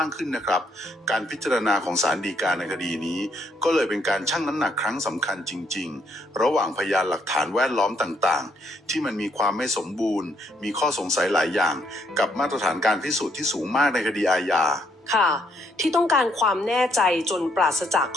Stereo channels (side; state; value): both; normal; correlation 0.71